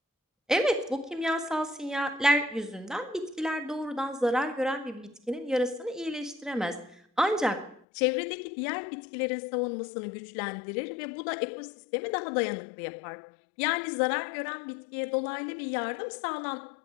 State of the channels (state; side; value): drops out; right; at 7.8 s